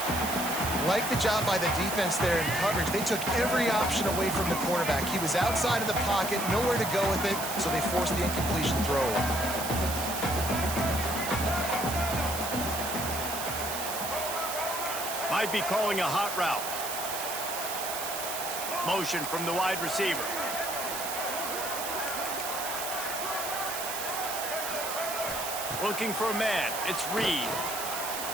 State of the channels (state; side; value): noise; right; hiss, 5 dB below the sound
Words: Like the job by the defense there in coverage. They took every option away from the quarterback. He was outside of the pocket, nowhere to go with it, so they forced the incompletion throw. Might be calling a hot route. Motion from the wide receiver. Looking for a man. It's Reed.